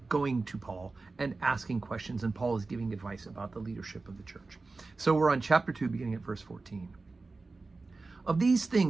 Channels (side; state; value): left; quieter; 3.7 dB